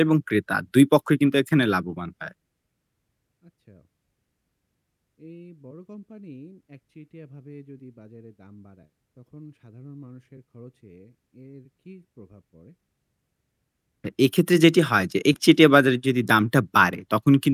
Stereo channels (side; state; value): both; identical; correlation 1.00